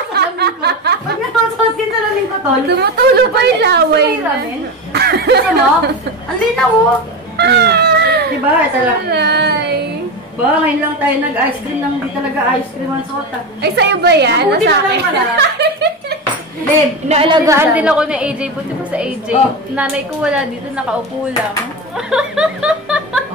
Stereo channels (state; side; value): normal; both; correlation 0.20